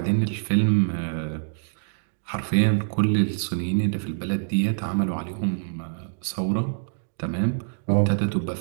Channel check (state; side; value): silent; left; digital silence